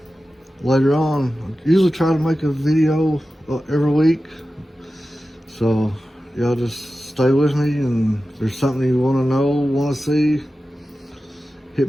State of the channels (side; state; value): both; normal; correlation 0.94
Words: later on. I usually try to make a video every week, so y'all just stay with me, and if there's something you want to know, want to see, hit